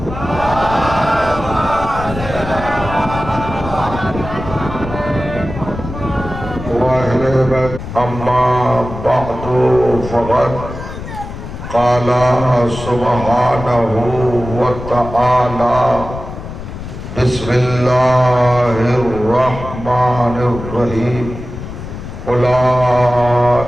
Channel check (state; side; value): noise; left; rumble, 10 dB below the sound